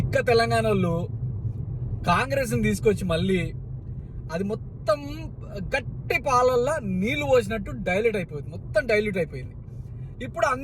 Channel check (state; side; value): identical; both; correlation 1.00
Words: తెలంగాణ వాళ్ళు కాంగ్రెస్ని తీసుకొచ్చి మళ్ళీ అది మొత్తం గట్టి పాలల్లో నీళ్లు పోసినట్టు డైల్యూట్ అయిపోయింది, మొత్తం డైల్యూట్ అయిపోయింది. ఇప్పుడు